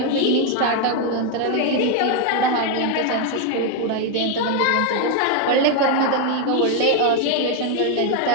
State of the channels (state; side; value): different; both; correlation 0.01